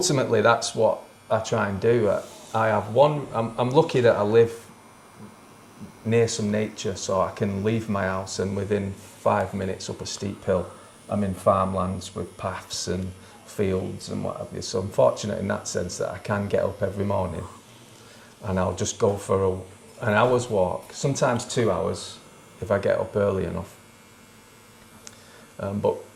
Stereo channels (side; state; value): both; identical; correlation 1.00